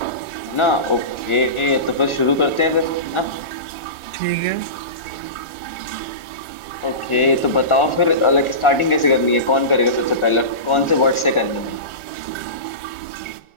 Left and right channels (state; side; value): late; right; 1.4 ms